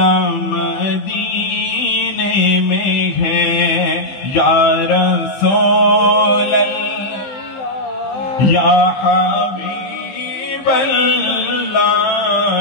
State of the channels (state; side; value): late; right; 15 ms